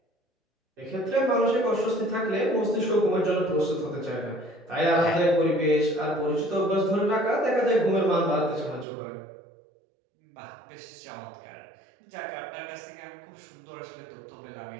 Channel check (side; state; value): left; drops out; at 8.8 s